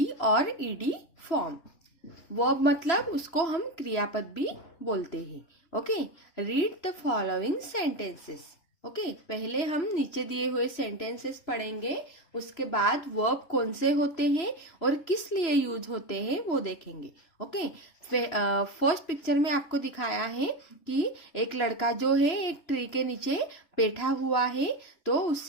और ईडी फॉर्म। वर्ब मतलब उसको हम क्रियापद भी बोलते हैं। Okay, read the following sentences. Okay, पहले हम नीचे दिए हुए सेंटेंसेस पढ़ेंगे, उसके बाद वर्ब कौन से होते हैं और किस लिए यूज होते हैं वो देखेंगे। ओके, फर्स्ट पिक्चर में आपको दिखाया है कि एक लड़का जो है एक ट्री के नीचे बैठा हुआ है, तो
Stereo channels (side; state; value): right; late; 3.0 ms